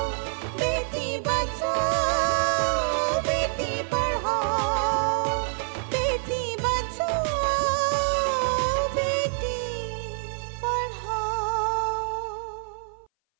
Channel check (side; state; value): left; silent; 58 dB below the other